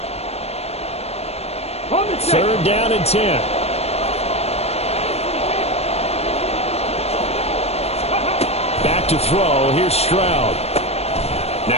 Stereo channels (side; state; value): right; late; 0.30 ms